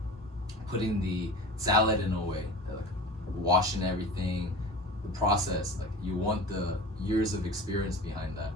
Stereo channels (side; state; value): both; normal; correlation 0.36